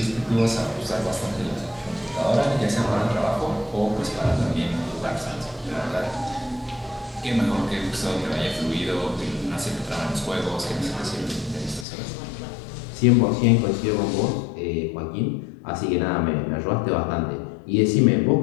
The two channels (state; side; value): drops out; right; at 11.9 s